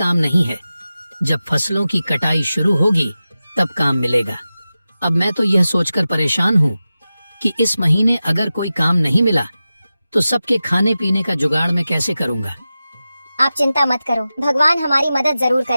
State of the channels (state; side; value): inverted; both; correlation -0.94